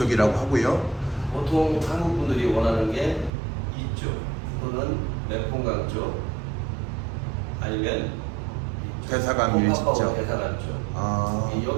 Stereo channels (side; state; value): left; drops out; at 3.3 s